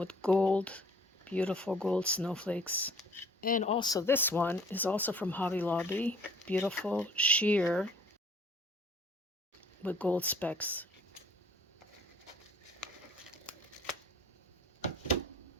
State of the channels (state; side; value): normal; both; correlation 0.55